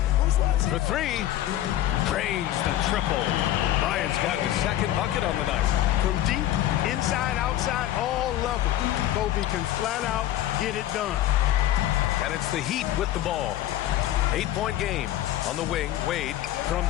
For 3. Drains the triple. Bryant's got his second bucket on the night. From deep, inside, outside, all levels. Kobe can flat out get it done. And it's the Heat with the ball. 8-point game. On the wing, Wade from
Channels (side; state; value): right; quieter; 13.4 dB